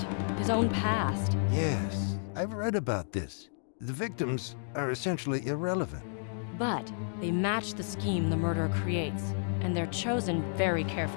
his own past. Yes, I've read about this. The victims are essentially irrelevant. But they match the scheme the murderer creates, and they're chosen very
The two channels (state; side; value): silent; right; digital silence